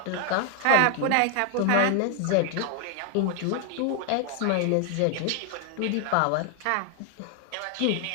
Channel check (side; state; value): both; different; correlation 0.00